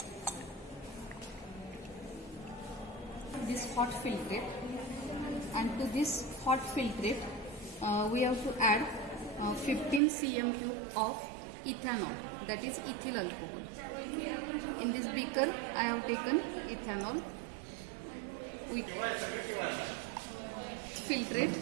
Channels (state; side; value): drops out; left; at 10.0 s